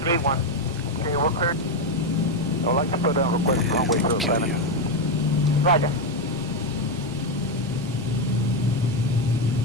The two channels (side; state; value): both; normal; correlation 0.07